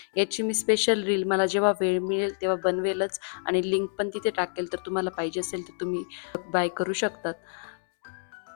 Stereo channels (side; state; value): right; silent; digital silence